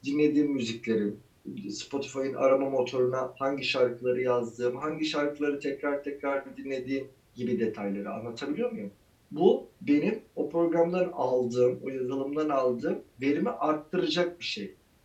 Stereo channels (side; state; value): both; identical; correlation 1.00